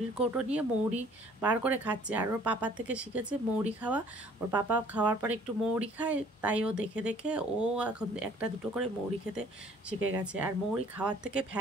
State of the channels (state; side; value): normal; both; correlation 0.56